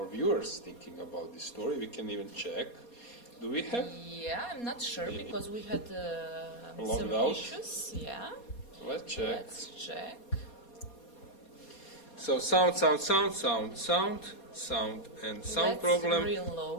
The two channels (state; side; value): late; right; 4.2 ms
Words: viewers thinking about this story. We can even check. Do we have? Yeah, I'm not sure because we had some issues. Yeah. Let's check. Let's check. So sound, and sound problem. Let's